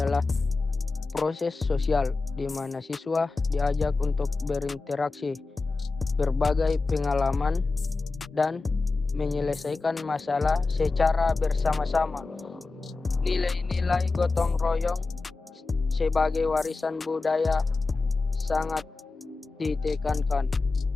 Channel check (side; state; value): right; quieter; 3.8 dB